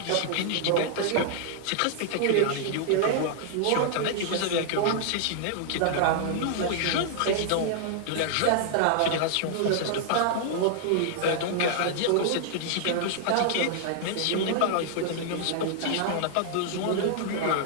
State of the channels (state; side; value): different; both; correlation -0.01